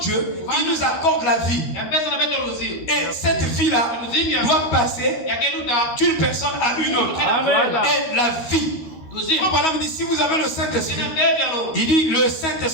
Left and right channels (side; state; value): right; late; 13 ms